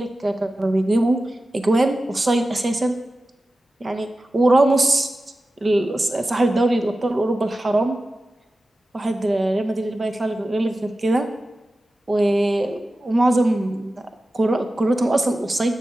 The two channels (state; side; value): normal; both; correlation 0.94